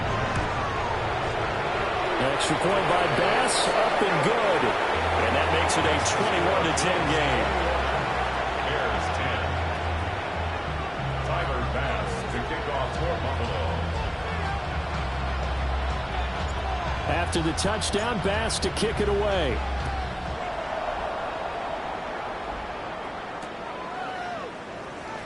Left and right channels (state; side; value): identical; both; correlation 1.00